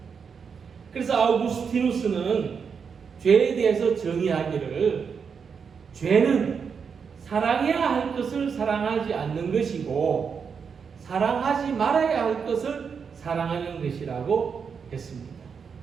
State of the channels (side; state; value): left; quieter; 6.2 dB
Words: 그래서 아우구스티누스는 죄에 대해서 정의하기를 죄는 사랑해야 할 것을 사랑하지 않는 것이고 사랑하지 말아야 할 것을 사랑하는 것이라고 했습니다.